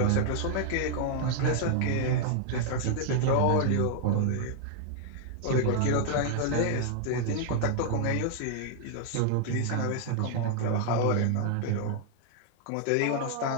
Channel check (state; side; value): different; both; correlation 0.00